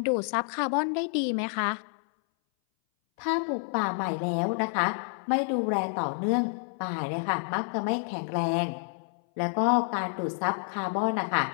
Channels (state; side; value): silent; right; 59 dB below the other